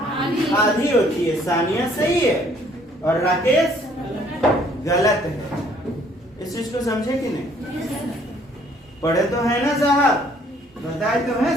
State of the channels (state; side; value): normal; both; correlation 0.61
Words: आधी होती है। सानिया सही है और राकेश गलत है। इस चीज को समझे कि नहीं? पढ़े तो है ना साहब, बताए तो है